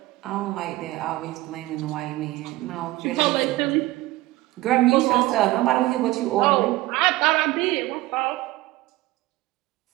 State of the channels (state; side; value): quieter; left; 18.3 dB